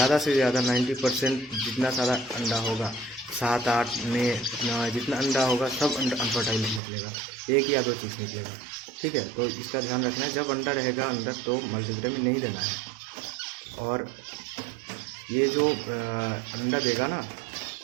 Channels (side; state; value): left; drops out; at 6.8 s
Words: से ज़्यादा 90% जितना सारा अंडा होगा, 7-8 में जितना अंडा होगा, सब अनफर्टाइल निकलेगा, 1 या 2 चीज़ निकलेगा। ठीक है, तो इसका ध्यान रखना है, जब अंडा रहेगा अंदर तो मल्टीविटामिन नहीं देना है। और ये जो अंडा देगा ना,